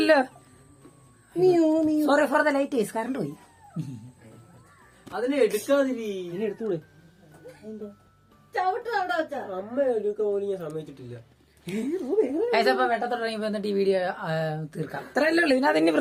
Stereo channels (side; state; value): both; identical; correlation 1.00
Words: Sorry for the light, current പോയി. അതിനെ എടുക്കാതിരി എടുത്തൂടെ അമ്മ എടുക്കാൻ പോലും ഞാൻ സമ്മതിച്ചിട്ടില്ല. അപ്പൊ വെട്ടത്തോടങ്ങിപ്പോ എന്നിട്ട് ഈ വീഡിയോ തീർക്കാം. അത്രയല്ലേ ഉള്ളു, ഇതിനകത്ത് ഇനി